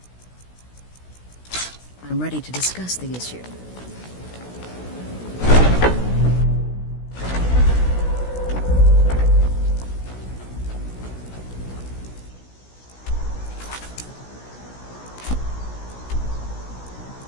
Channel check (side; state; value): right; late; 16 ms